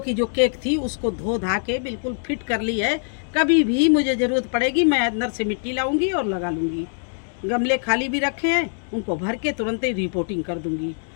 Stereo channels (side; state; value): right; silent; 63 dB below the other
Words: जो केक थी उसको धो धा के बिल्कुल फिट कर ली है। कभी भी मुझे ज़रूरत पड़ेगी मैं अंदर से मिट्टी लाऊंगी और लगा लूँगी। गमले खाली भी रखे हैं, उनको भर के तुरंत ही रिपोर्टिंग कर दूँगी।